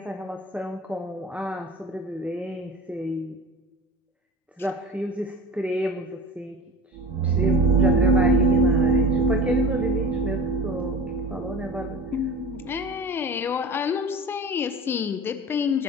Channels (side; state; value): both; normal; correlation 0.35